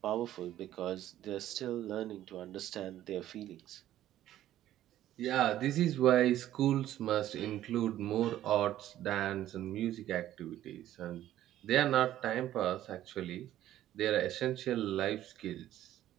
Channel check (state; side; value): quieter; left; 12.9 dB